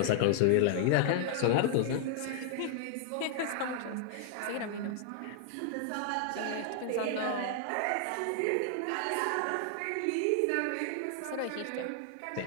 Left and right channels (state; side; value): different; both; correlation 0.00